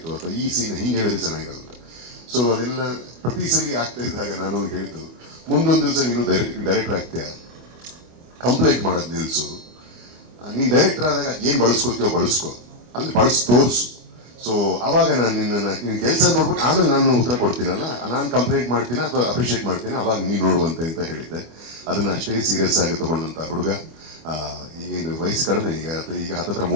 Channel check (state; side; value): late; left; 25 ms